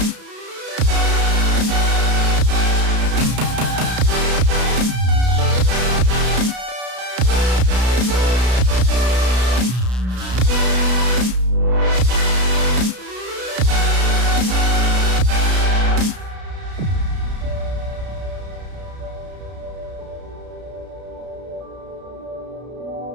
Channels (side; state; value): left; late; 33 ms